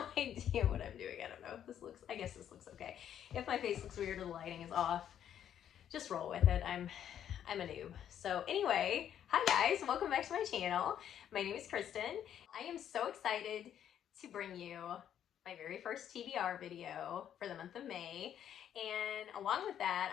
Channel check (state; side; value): quieter; right; 9.9 dB